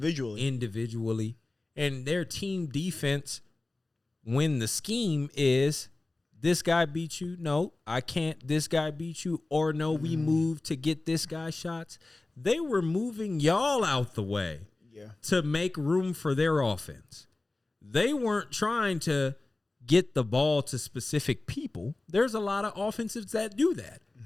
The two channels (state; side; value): quieter; right; 3.0 dB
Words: And their team defense, when the scheme is this guy beat you, no, I can't, this guy beat you, or no, we move to get this guy shots. They were moving y'all out the way to make room for their offense. They weren't trying to get the ball to specific people. There's a lot of offensives that do that.